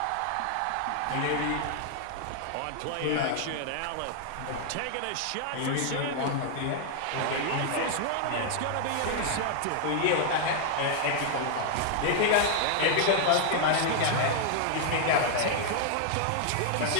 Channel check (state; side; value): different; both; correlation 0.00